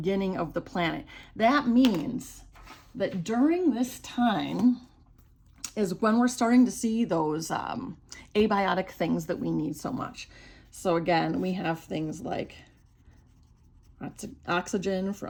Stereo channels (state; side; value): identical; both; correlation 1.00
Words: of the planet, that means that during this time is when we're starting to see those abiotic things that we need so much. So again, we have things like oxygen